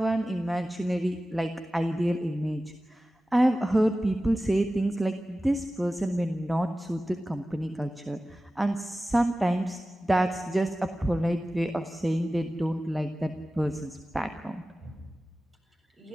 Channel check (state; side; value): normal; both; correlation 0.95